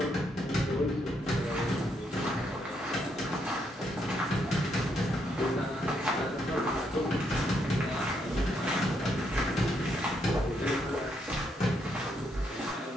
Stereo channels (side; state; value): both; normal; correlation 0.76